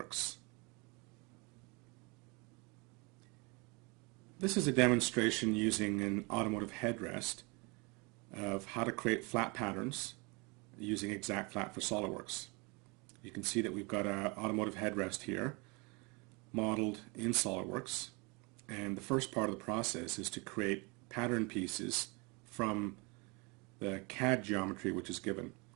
This is a demonstration using an automotive headrest of how to create flat patterns using Exact Flat for SolidWorks. You can see that we've got an automotive headrest here modeled in SolidWorks, and the first part of the process is to create pattern pieces from the CAD geometry which is given.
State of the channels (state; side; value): quieter; left; 28.9 dB